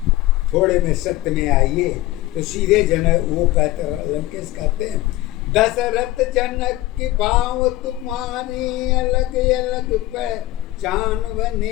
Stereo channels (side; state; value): right; quieter; 16.4 dB